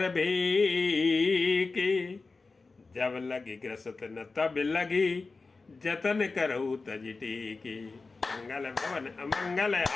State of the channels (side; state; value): right; quieter; 3.9 dB